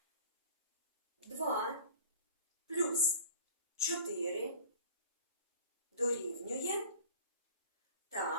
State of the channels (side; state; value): both; inverted; correlation -0.44